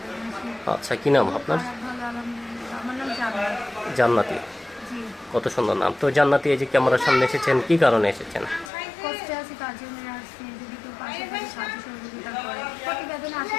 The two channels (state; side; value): drops out; right; at 8.7 s